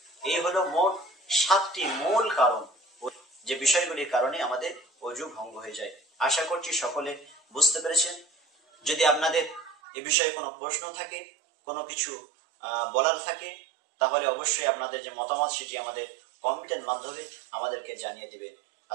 এই হলো মোট 7টি মূল কারণ, যে বিষয়গুলির কারণে আমাদের ওযু ভঙ্গ হয়ে যায়। আশা করছি সকলে বুঝতে পেরেছেন। যদি আপনাদের এ বিষয়ে কোনো প্রশ্ন থাকে, কোনো কিছু বলার থাকে, তাহলে অবশ্যই আপনাদের যে মতামত সেটি আমাদের কমেন্টের মাধ্যমে আমাদেরকে জানিয়ে দিবেন।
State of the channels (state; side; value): drops out; left; at 9.8 s